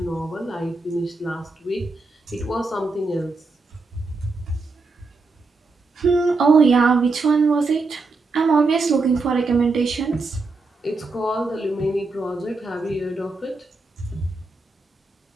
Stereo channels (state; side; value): quieter; left; 3.7 dB